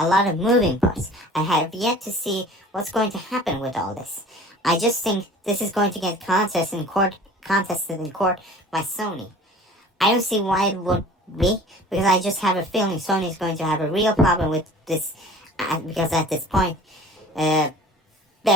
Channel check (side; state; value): both; normal; correlation 0.45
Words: lot of moving parts. I have yet to see what's going to happen with all this. I just think this is going to get contested in court contested in court by Sony. I don't see why it would be, because I just have a feeling Sony is going to have a real problem with this, because at this point,